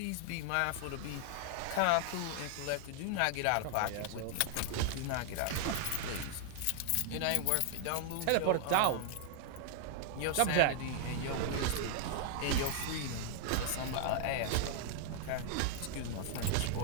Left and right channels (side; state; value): both; different; correlation 0.00